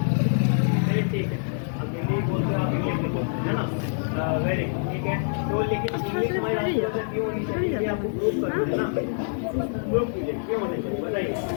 ठीक है, अब हिंदी बोलते हो, आप इंग्लिश में बोलते हैं, है ना। वेरी गुड, ठीक है। तो लेकिन इंग्लिश हमारी राष्ट्रभाषा क्यों होनी चाहिए, ये आपको प्रूव करना है ना। प्रूव कीजिए क्यों होनी चाहिए, बताइए।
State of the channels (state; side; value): silent; right; digital silence